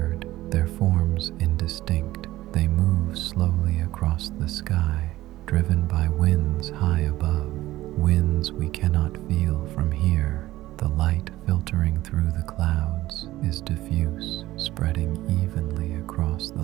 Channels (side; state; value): left; quieter; 16.2 dB